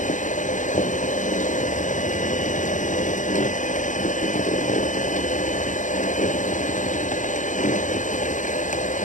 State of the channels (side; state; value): right; late; 0.37 ms